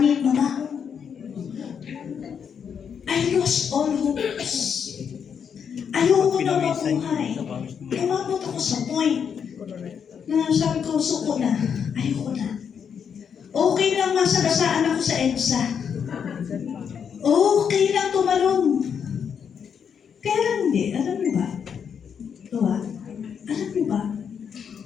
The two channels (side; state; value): right; quieter; 7.3 dB